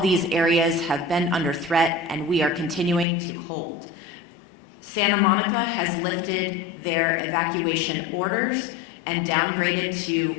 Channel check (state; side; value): drops out; right; at 3.1 s